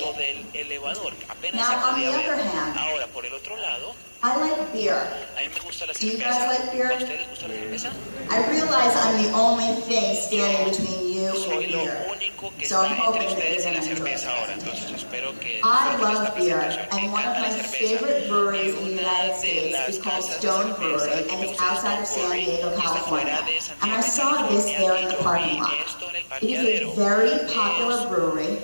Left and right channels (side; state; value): both; inverted; correlation -1.00